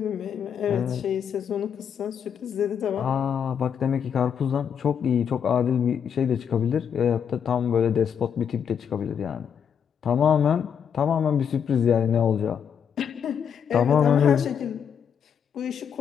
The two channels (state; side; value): quieter; right; 7.7 dB